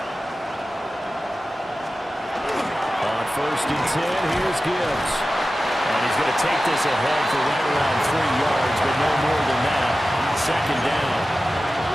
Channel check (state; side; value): normal; both; correlation 0.95